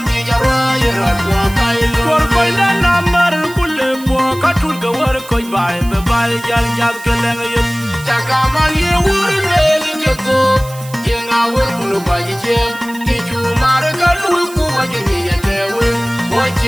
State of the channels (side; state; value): right; noise; hiss, 18 dB below the sound